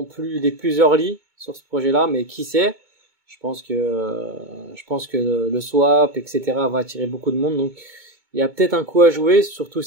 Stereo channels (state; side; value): late; left; 2.2 ms